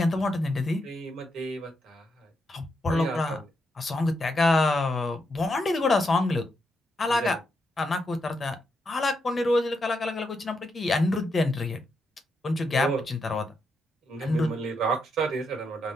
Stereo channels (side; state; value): both; normal; correlation 0.82